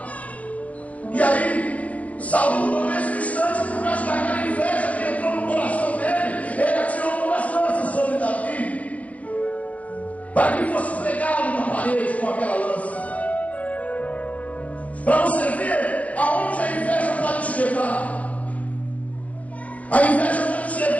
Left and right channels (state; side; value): late; right; 0.068 ms